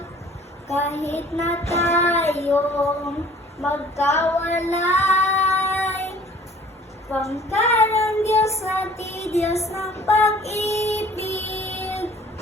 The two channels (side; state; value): both; normal; correlation 0.52